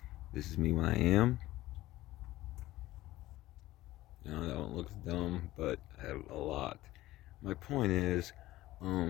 This is me when I am. That one looks dumb, but I have a lot. My point is,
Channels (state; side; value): quieter; right; 16.5 dB